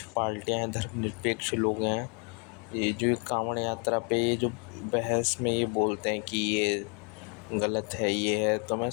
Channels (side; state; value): right; quieter; 36.4 dB